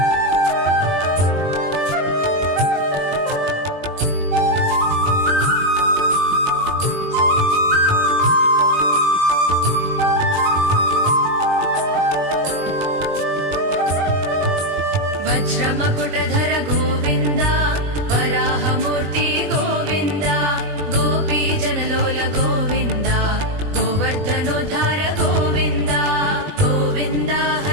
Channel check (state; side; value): late; left; 20 ms